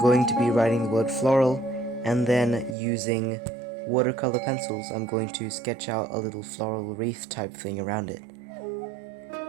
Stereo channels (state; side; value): drops out; left; at 2.8 s